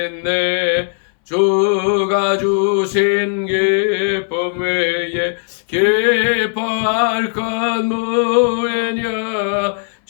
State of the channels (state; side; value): silent; right; 64 dB below the other